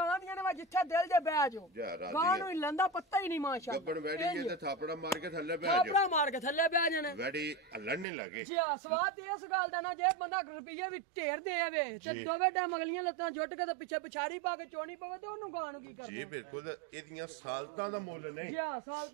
ਦੀਆਂ ਨੇ ਜਿੱਥੇ ਦਿਲ ਦੇ ਬਹਿ ਜਾਓ ਗਾਂ ਨੂੰ ਲੰਦਾ ਪੱਤਾ ਹੀ ਨਹੀਂ ਮਾਸ਼ਾਅੱਲਾ ਗੱਬਣ ਵੈੜੀ ਤੇ ਥਾਪੜਾ ਮਾਰ ਕੇ ਥੱਲੇ ਬਹਿ ਜਾਣੇ ਵੈੜੀ ਹੱਲਣ ਨਹੀਂ ਲੱਗੇ ਜੀ ਸਵਾਦ ਇਸ ਗੱਲ ਦਾ ਨਾ ਜੇ ਬੰਦਾ ਰੁਪਈਏ ਵੀ ਢੇਰ ਦੇਵੇ ਤੇ ਦੋਵੇਂ ਟਾਈਮ ਅਗਲੀਆਂ ਲੱਤਾਂ ਜੁੱਟ ਕੇ ਤੇ ਪਿੱਛੇ ਪਿਛਾੜੀ ਪਾ ਕੇ ਚੋਣੀ ਪਵੇ ਤੇ ਉਹਨੂੰ ਗਾਂ ਨੂੰ ਕੀ ਕਰਨਾ ਜੀ ਬਿਲਕੁਲ ਇਹਦੀਆਂ ਸਾਲਤਾਂ ਦਾ ਮੁੱਲ ਨਹੀਂ ਜੀ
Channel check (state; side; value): drops out; left; at 8.1 s